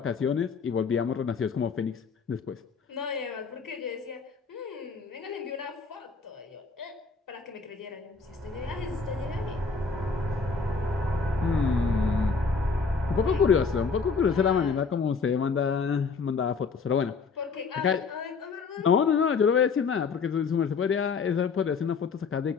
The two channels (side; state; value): right; quieter; 4.9 dB